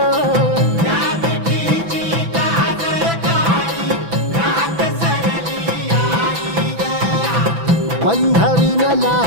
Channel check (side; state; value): left; late; 6.0 ms